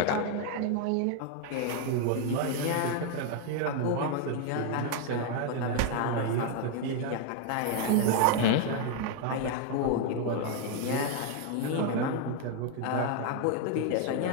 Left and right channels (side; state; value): both; different; correlation 0.00